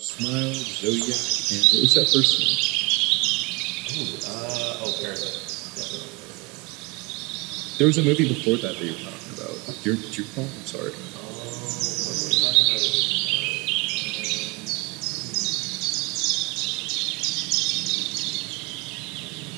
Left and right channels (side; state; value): left; quieter; 27.0 dB